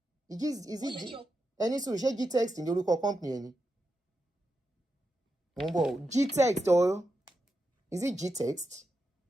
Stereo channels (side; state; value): both; normal; correlation 0.87